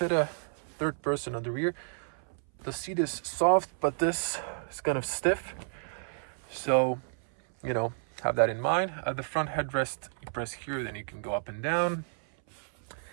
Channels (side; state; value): left; silent; 57 dB below the other